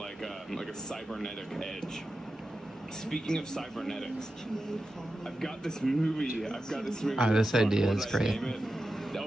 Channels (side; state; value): both; normal; correlation 0.91